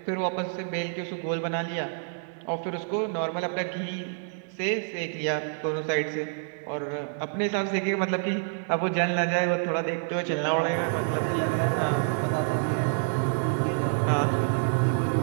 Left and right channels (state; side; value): silent; left; digital silence